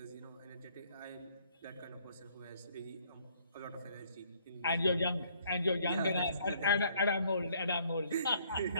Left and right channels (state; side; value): inverted; both; correlation -0.63